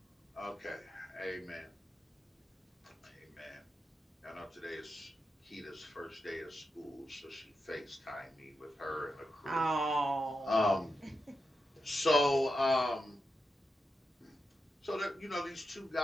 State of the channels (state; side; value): normal; both; correlation 0.88